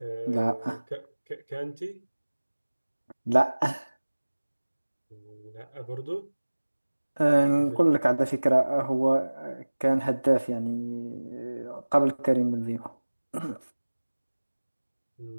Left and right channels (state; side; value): inverted; both; correlation -1.00